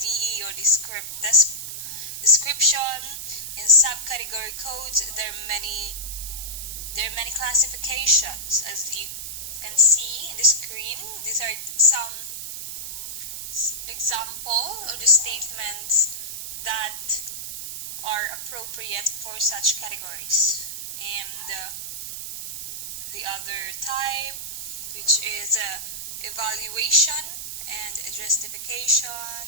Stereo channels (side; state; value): right; noise; hiss, 6 dB below the sound